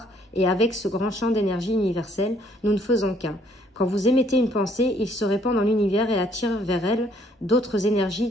et avec ce grand champ d'énergie universelle, nous ne faisons qu'un. Quand vous émettez une pensée, il se répand dans l'univers et attire vers elle d'autres énergies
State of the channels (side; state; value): both; normal; correlation 0.64